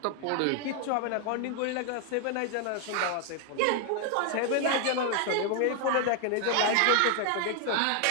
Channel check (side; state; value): both; different; correlation 0.00